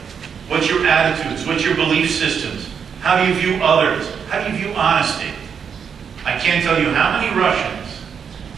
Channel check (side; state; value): left; quieter; 7.0 dB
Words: What's your attitudes? What's your belief systems? How do you view others? How do you view honesty? I can't tell you how many Russians